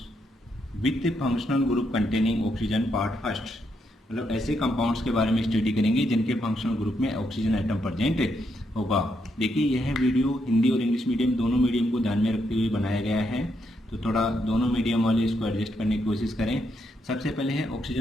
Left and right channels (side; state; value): both; normal; correlation 0.78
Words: with functional group containing oxygen part first. मतलब ऐसे कंपाउंड्स के बारे में स्टडी करेंगे जिनके फंक्शनल ग्रुप में ऑक्सीजन आइटम प्रेजेंट होगा। देखिए, यह वीडियो हिंदी और इंग्लिश मीडियम दोनों मीडियम को ध्यान में रखते हुए बनाया गया है, तो थोड़ा दोनों मीडियम वाले इसको एडजस्ट करने की कोशिश करें। सबसे पहले है